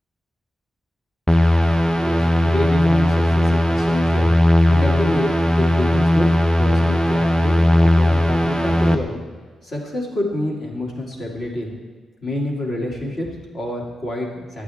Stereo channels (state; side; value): normal; both; correlation 0.96